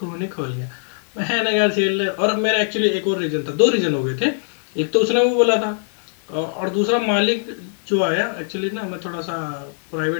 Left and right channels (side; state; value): right; silent; 65 dB below the other